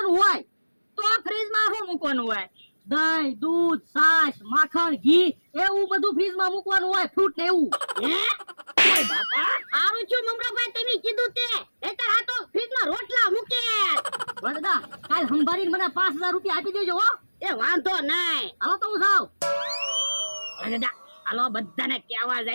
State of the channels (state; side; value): inverted; both; correlation -1.00